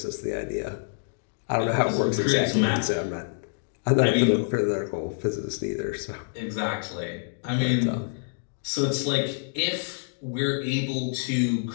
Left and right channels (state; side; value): silent; right; digital silence